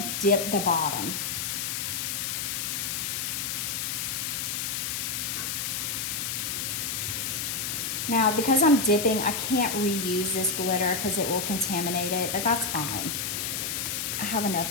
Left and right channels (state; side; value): noise; left; hiss, 1 dB below the sound